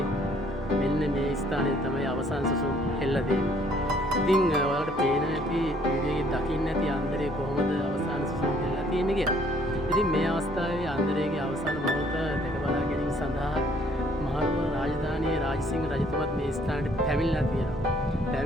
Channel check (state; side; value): normal; both; correlation 0.62